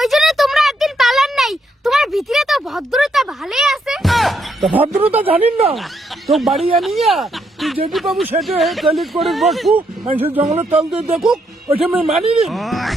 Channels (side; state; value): both; normal; correlation 0.77